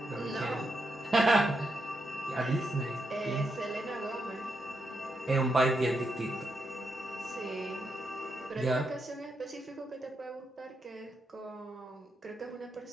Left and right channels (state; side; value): normal; both; correlation 0.83